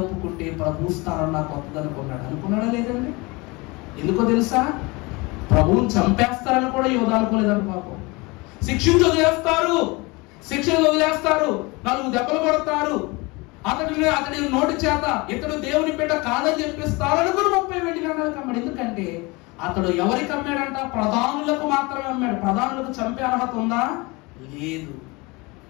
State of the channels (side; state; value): right; quieter; 25.4 dB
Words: ప్రభు స్థానం నాకు వద్దనుకున్నాడు. అనుకున్నాడా లేదండి? ఎందుకో తెలుసా? ప్రభువుని చంపేస్తారని కూడా యోధా అనుకోలేదని. పాపం శిక్షణ వదిలేస్తారు, 4 దెబ్బలు కొడతారు, అతడి నోటి చేత ఇతడు దేవుని బిడ్డ కాదని చెప్పిస్తారు అనుకుని 30 వెండి నాణాలకు అమ్మాడు. ఎందుకంటే అతడు ఎవరికి అమ్మాడంట? ప్రధానులకు మాత్రమే అమ్మాడు. ప్రధానులకు చంపే అర్హత ఉందా? లేదు.